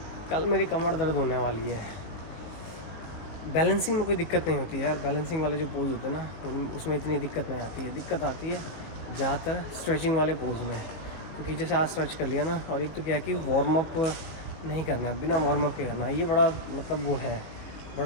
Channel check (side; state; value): right; late; 19 ms